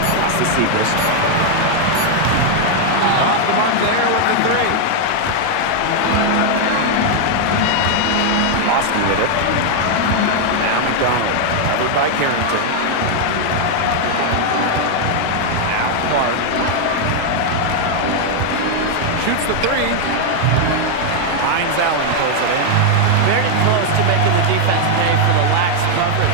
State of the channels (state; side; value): different; both; correlation 0.00